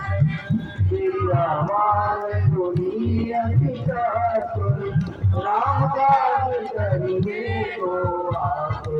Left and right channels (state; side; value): identical; both; correlation 1.00